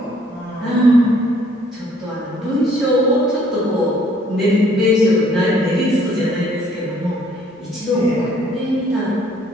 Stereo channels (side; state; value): both; normal; correlation 0.62